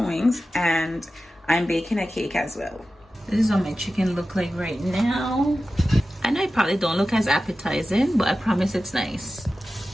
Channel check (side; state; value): both; normal; correlation 0.94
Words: wings, and I'm baking a cake as well. This is what my chicken look like right now. I know it probably don't look as appetizing, but I promise it's nice.